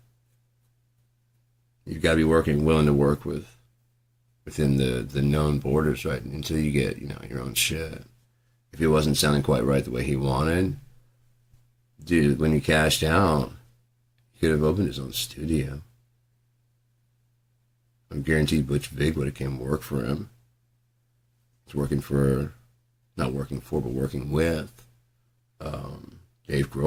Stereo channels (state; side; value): identical; both; correlation 1.00